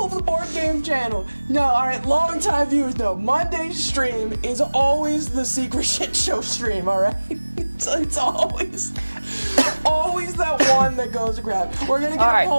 of the Board Game channel. No, alright, long time viewers know. Monday's stream is always the secret shit show stream, alright? It's always that one that goes to grab. We're gonna get a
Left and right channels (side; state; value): both; inverted; correlation -1.00